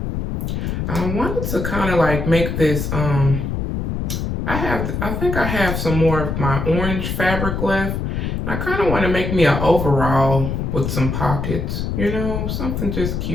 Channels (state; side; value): noise; left; rumble, 2 dB below the sound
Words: I wanted to kind of like make this, I think I have some more of my orange fabric left. And I kind of want to make me an overall with some pockets, you know, something just